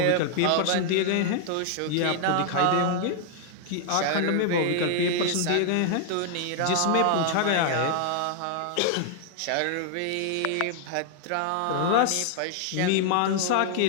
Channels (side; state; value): both; different; correlation 0.00